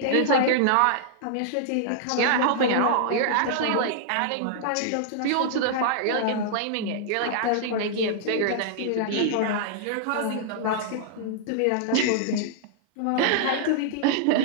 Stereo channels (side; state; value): both; different; correlation -0.01